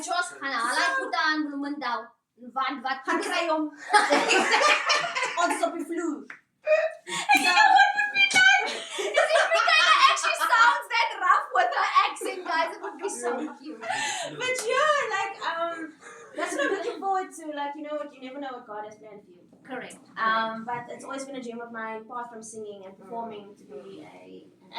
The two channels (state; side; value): identical; both; correlation 1.00